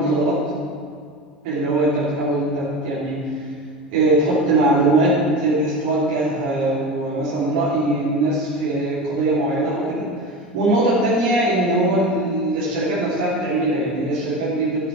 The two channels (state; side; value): normal; both; correlation 0.27